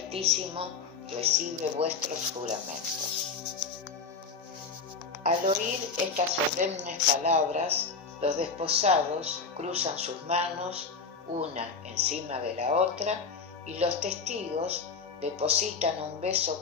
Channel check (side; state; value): right; quieter; 4.9 dB